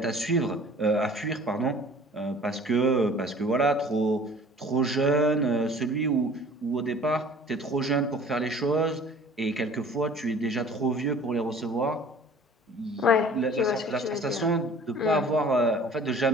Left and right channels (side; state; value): both; normal; correlation 0.48